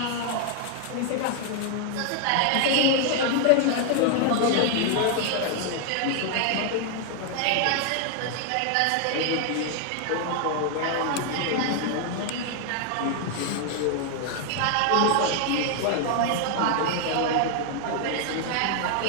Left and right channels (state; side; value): different; both; correlation 0.00